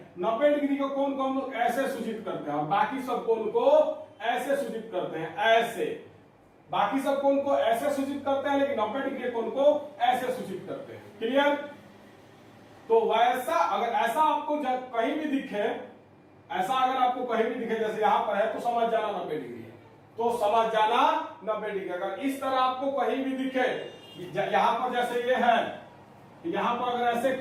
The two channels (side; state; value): both; identical; correlation 1.00